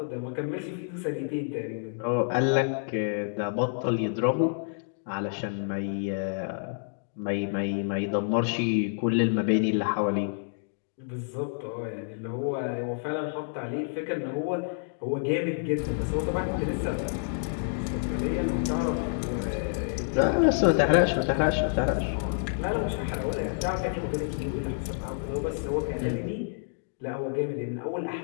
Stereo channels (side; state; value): right; silent; digital silence